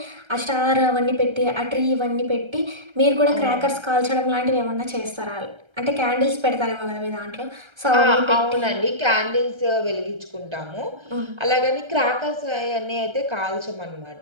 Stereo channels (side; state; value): left; late; 1.3 ms